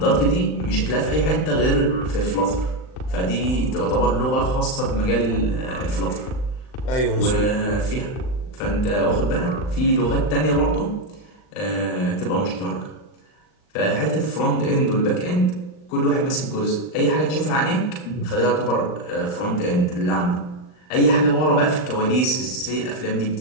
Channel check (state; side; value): late; right; 39 ms